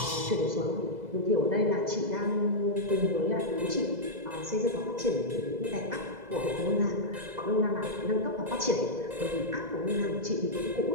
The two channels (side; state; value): left; late; 2.0 ms